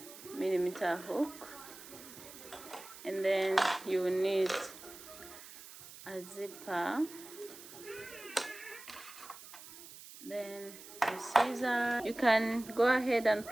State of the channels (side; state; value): right; noise; hiss, 16 dB below the sound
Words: millimeter hook, and then you will need a zipper, then a scissor. You can go ahead and